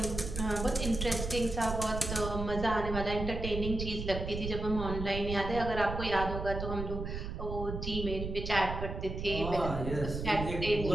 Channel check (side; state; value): right; noise; rumble, 5 dB below the sound